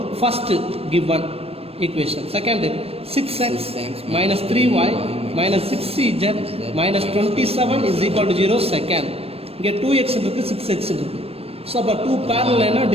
First given equation. Second 6x minus 3y minus 6z minus 27 is equal to 0. Second இங்கே 2x இருக்கு 6x இருக்கு. So அப்போ 2 parallel என்ன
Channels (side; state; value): left; late; 0.28 ms